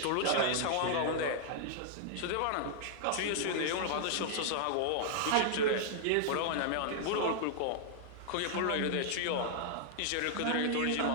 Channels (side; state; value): both; different; correlation -0.01